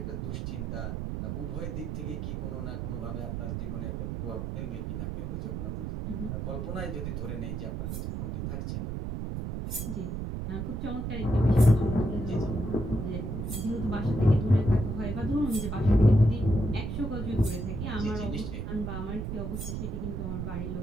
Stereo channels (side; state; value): right; noise; rumble, 4 dB below the sound